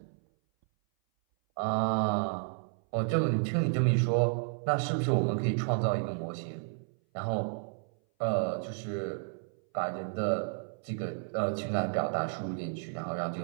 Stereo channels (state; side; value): silent; left; 57 dB below the other